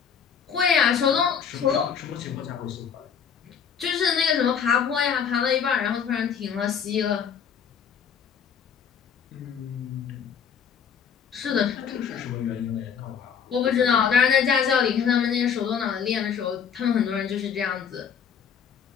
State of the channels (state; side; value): quieter; right; 7.3 dB